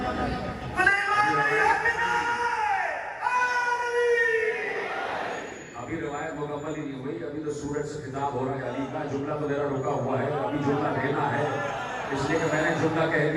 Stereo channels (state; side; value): identical; both; correlation 1.00